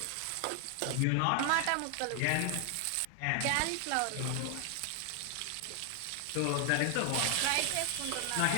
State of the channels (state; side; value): different; both; correlation 0.00